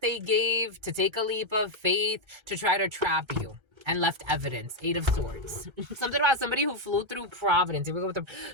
gave to take a leap of faith to try to trap you and left evidence. 8 of Swords. Something about somebody who flew through Providence. Here we go with the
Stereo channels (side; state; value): left; late; 1.3 ms